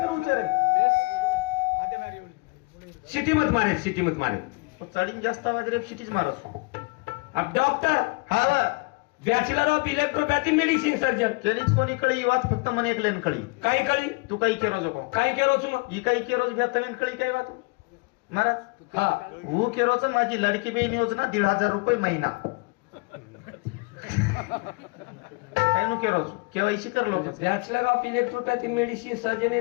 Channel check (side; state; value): right; quieter; 27.9 dB